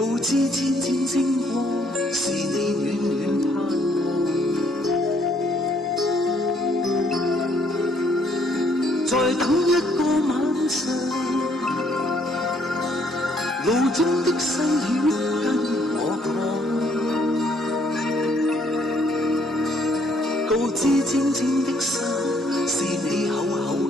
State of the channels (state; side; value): normal; both; correlation 0.67